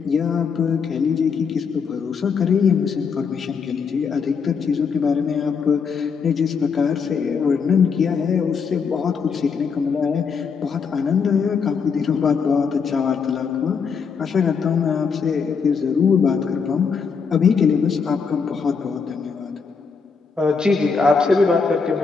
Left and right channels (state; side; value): quieter; right; 5.7 dB